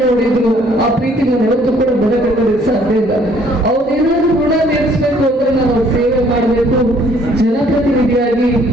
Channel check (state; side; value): normal; both; correlation 0.61